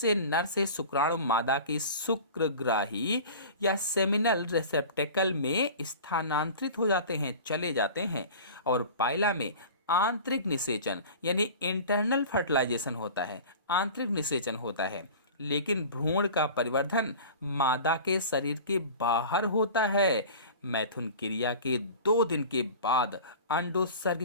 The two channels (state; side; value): inverted; both; correlation -0.38